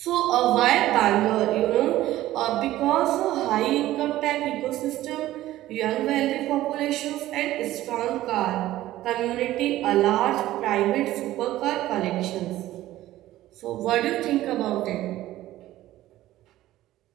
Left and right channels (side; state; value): left; quieter; 15.0 dB